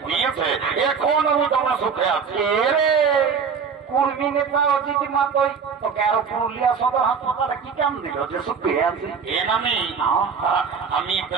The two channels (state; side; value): quieter; left; 6.2 dB